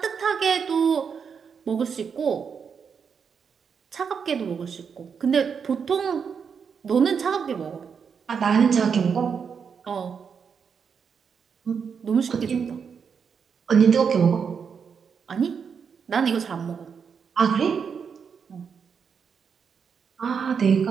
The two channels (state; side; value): quieter; left; 6.5 dB